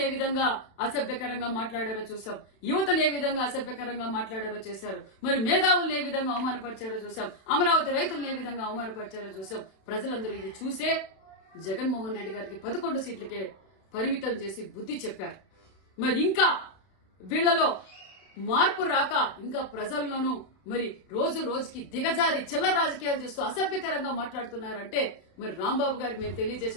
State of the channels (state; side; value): late; right; 31 ms